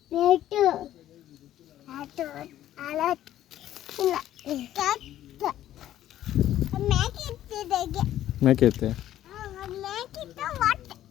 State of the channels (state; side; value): quieter; right; 12.6 dB